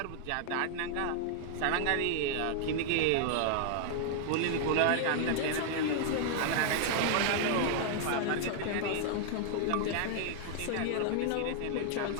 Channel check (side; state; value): both; different; correlation -0.01